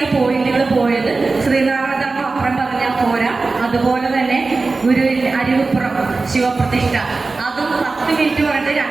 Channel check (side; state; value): left; quieter; 3.8 dB